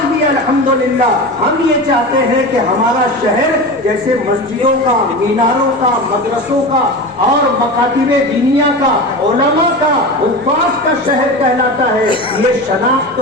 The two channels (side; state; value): both; normal; correlation 0.27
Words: بھی الحمدللہ ہم یہ چاہتے ہیں کہ ہمارا شہر جیسے مسجدوں کا، میناروں کا، مدرسوں کا اور مکاتب دینیا کا، علماء کا، حفاظ کا شہر کہلاتا ہے، یہ شناخت